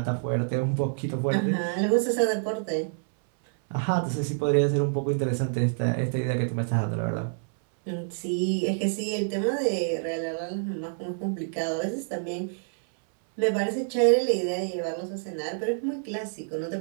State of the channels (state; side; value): silent; left; 60 dB below the other